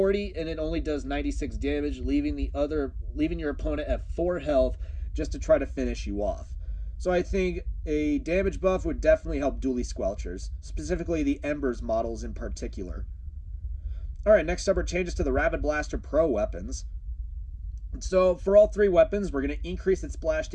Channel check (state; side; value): identical; both; correlation 1.00